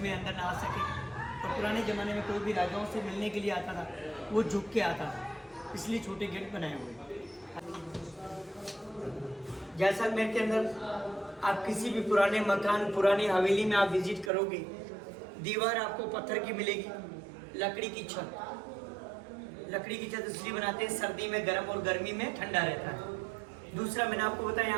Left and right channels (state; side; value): drops out; left; at 14.3 s